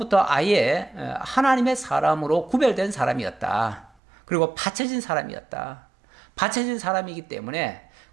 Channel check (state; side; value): drops out; left; at 3.9 s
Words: 아예 하나님의 사람으로 구별된 사람이었다. 그리고 바쳐진 사람이었다. 바쳐진 사람이기 때문에